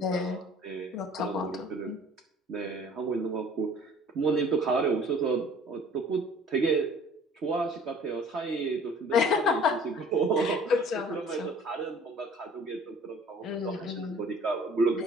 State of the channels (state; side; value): normal; both; correlation 0.50